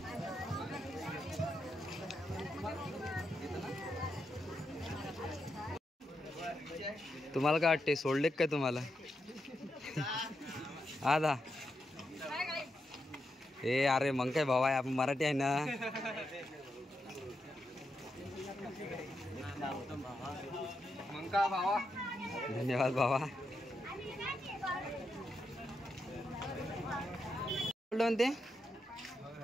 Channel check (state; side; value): normal; both; correlation 0.85